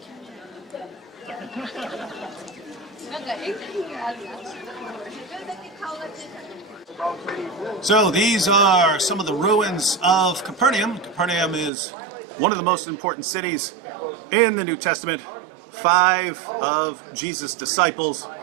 So these are some of the ruins of Capernaum. Capernaum is one of the most important cities in the New Testament. 5 of Jesus' disciples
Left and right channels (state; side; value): drops out; left; at 11.7 s